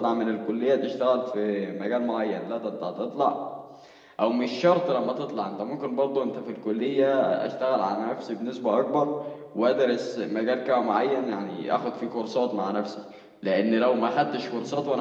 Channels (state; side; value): identical; both; correlation 1.00